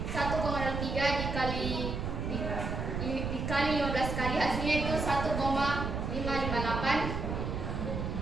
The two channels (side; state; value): right; noise; rumble, 3 dB below the sound